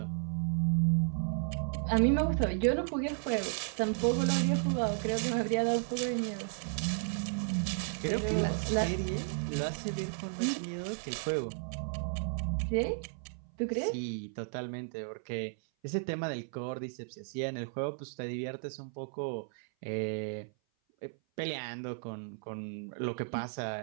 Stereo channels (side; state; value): left; silent; 55 dB below the other